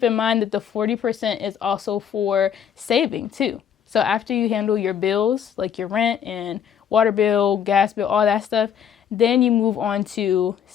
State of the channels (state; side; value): quieter; right; 8.5 dB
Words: in mind that the 40% is also for saving too. So after you handle your bills, like your rent and water bill, gas bill, all that stuff, then you move on to